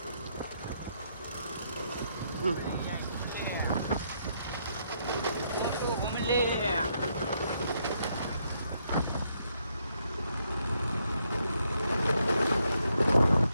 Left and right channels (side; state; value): both; inverted; correlation -0.75